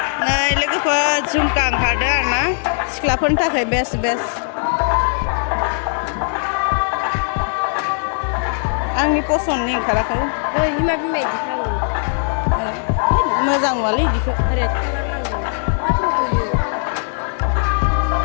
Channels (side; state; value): right; silent; digital silence